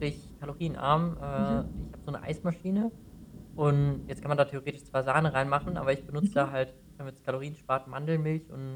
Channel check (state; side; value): identical; both; correlation 1.00